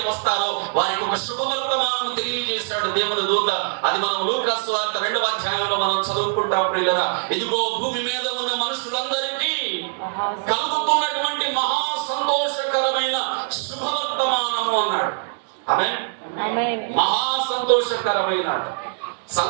వస్తారో వారికి ఒక శుభవర్తమానం తెలియజేశాడు దేవుని దూత. అది మనం లూకాసు వార్త 2వ అధ్యాయంలో మనం చదువుకుంటాం ప్రియులరా. ఇదిగో భూమి మీద ఉన్న మనుషులందరికీ కలుగుతున్నటువంటి మహా సంతోషకరమైన శుభవర్తమానము అన్నాడు. ఆమేన్. మహా సంతోషకరమైన,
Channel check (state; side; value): silent; left; digital silence